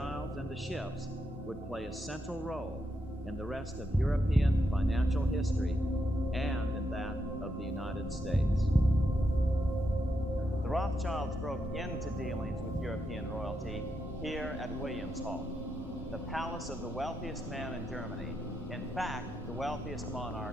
and the Schiffs would play a central role in the rest of European financial history and in that of the United States. The Rothschilds broke into dealings with European royalty here at Williams Hall, the palace of the wealthiest man in Germany, in fact, the wealthiest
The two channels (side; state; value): both; normal; correlation 0.82